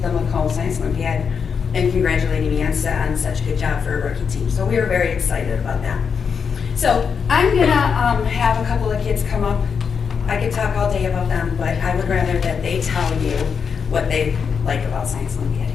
Macomb Science Olympiad, and congratulating me on such a good job for a rookie team. So we were very excited about that. So I'm gonna have a couple of kids come up. I could talk all day about them, but I would rather that they tell you what they like about Science Olympiad.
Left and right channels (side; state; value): right; quieter; 6.3 dB